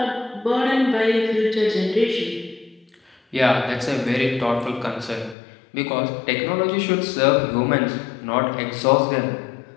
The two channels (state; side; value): drops out; right; at 5.4 s